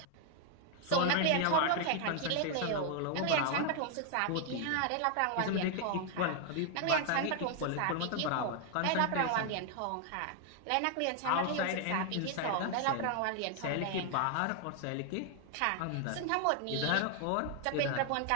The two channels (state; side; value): different; both; correlation 0.00